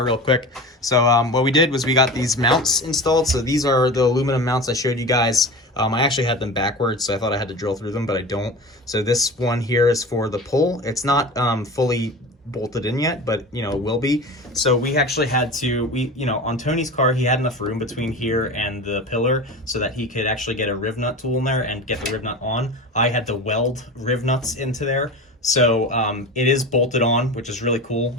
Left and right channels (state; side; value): normal; both; correlation 0.31